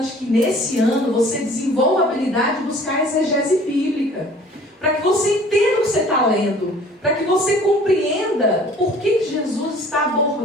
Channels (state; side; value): normal; both; correlation 0.51